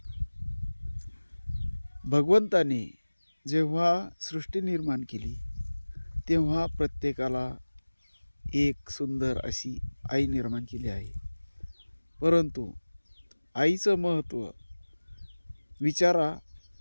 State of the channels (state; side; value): inverted; both; correlation -1.00